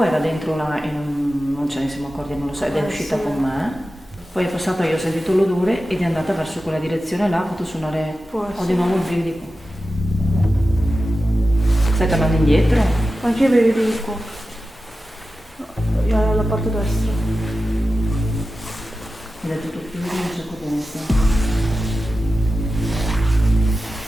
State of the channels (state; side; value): normal; both; correlation 0.93